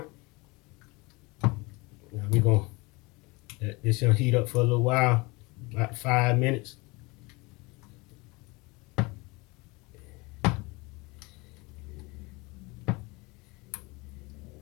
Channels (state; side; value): quieter; right; 25.4 dB